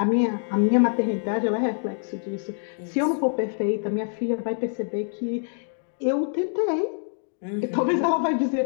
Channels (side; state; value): right; silent; digital silence